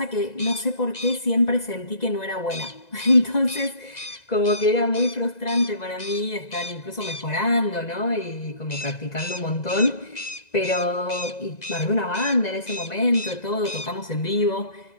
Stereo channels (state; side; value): late; right; 2.0 ms